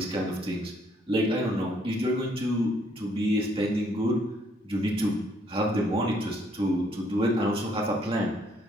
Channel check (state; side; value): normal; both; correlation 0.68